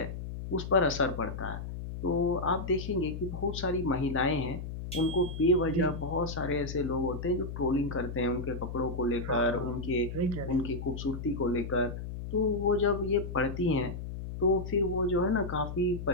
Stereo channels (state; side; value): noise; left; hum, 7 dB below the sound